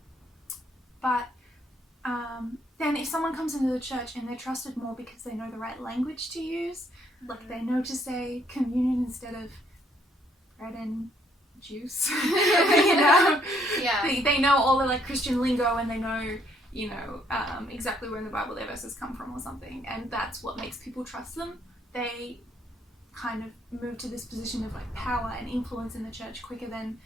But then if someone comes into the church and they're trusted more because they know the right language to use, like they know to say communion instead of bread and juice, you know? Yeah. They know all the like Christian lingo, and they know, exactly where in the Bible their verses come from or something, and that's what makes people trust them. They kind of move to this position of like power and influence in the church quicker than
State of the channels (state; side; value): normal; both; correlation 0.68